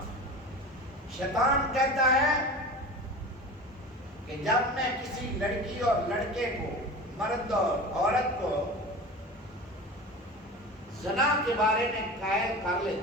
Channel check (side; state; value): both; normal; correlation 0.33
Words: ہے۔ شیطان کہتا ہے کہ جب میں کسی لڑکی اور لڑکے کو، مرد اور عورت کو زنا کے بارے میں قائل کر